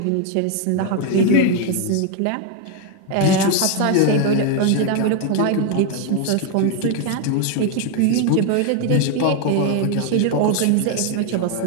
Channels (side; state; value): both; different; correlation 0.01